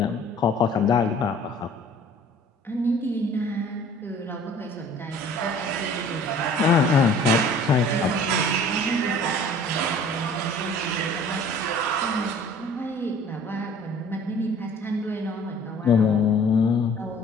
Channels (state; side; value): normal; both; correlation 0.50